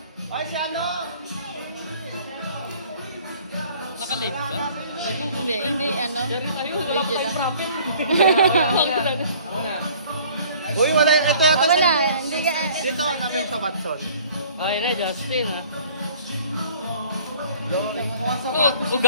Ay, si ano? Naka-live ka? Hindi, hindi, ano. Dari tayo, wala pa tayong profit. Uy, wala yung ito yata Wala, sa hindi ka. dito, nabi yung sa Watson. Ay na, Justin ha. Oh,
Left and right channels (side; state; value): both; inverted; correlation -0.52